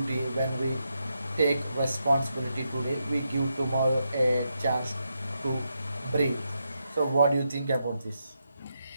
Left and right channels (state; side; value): inverted; both; correlation -0.83